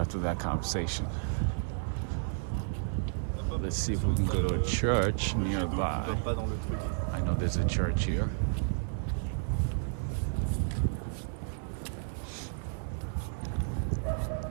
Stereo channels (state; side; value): silent; left; 57 dB below the other